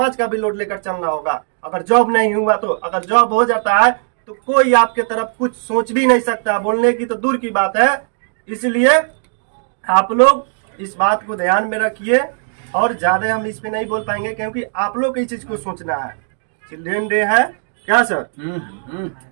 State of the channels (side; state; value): left; silent; digital silence